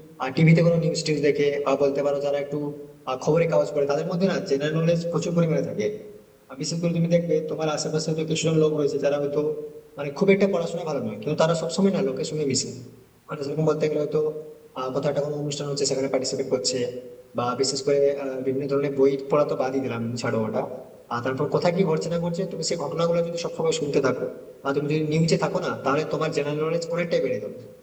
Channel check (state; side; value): identical; both; correlation 1.00